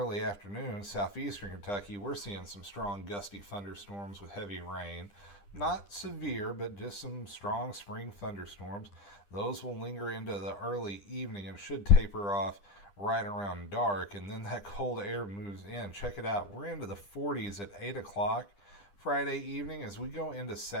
afternoon, southeastern Kentucky, we're seeing some strong gusty thunderstorms with heavy rain. Not severe, but just some strong spring thunderstorms. Those will linger into the early evening and should taper off right around dark, and then that cold air moves in. Check it out. We're into the 40s at 8 o'clock Friday evening. As we go into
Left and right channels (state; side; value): late; right; 10 ms